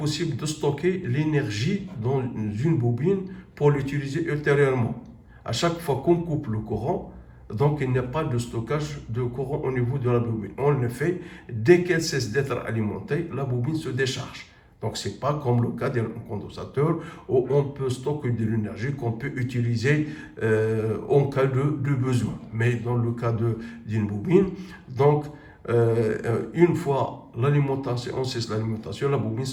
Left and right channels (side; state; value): both; identical; correlation 1.00